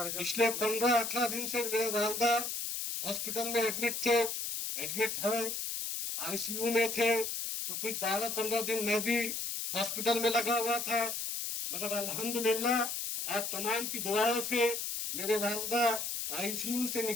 15-18 दिन से मेरे वालदा हॉस्पिटल में एडमिट है, आईसीयू में थे, तो कुछ 12-15 दिन मैं भी हॉस्पिटल में लगा हुआ था, मगर अल्हम्दुलिल्लाह आप तमाम की दुआओं से मेरे वालदा आईसीयू से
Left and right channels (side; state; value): left; noise; hiss, 3 dB below the sound